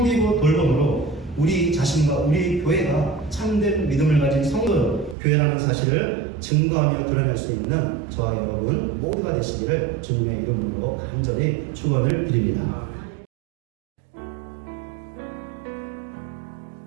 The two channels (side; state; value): left; drops out; at 5.2 s